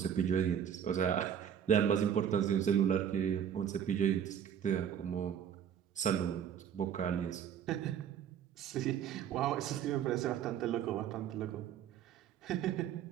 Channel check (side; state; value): left; quieter; 8.9 dB